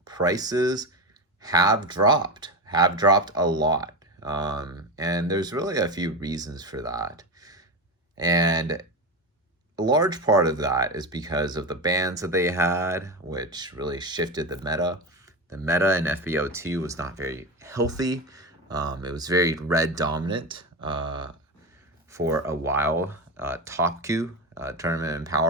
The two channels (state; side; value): normal; both; correlation 0.19